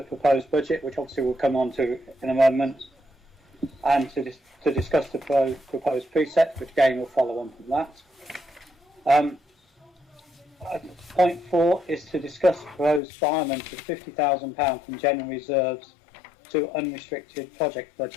proposed budget, which obviously we'll come on to in a moment, and to discuss the proposed precepts, which again will follow on from that. Point 4 is to discuss the proposed requirement of £50,000 from general reserves to unrestricted project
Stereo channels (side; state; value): right; drops out; at 13.0 s